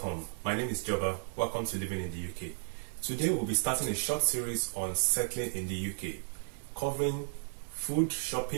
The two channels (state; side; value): silent; left; digital silence